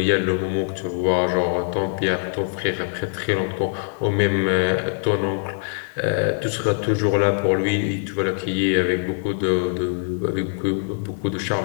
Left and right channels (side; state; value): right; silent; 64 dB below the other